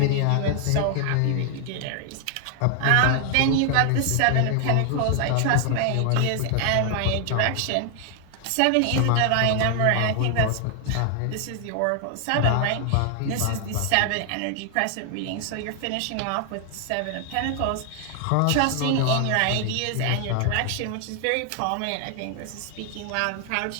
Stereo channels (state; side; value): different; both; correlation 0.00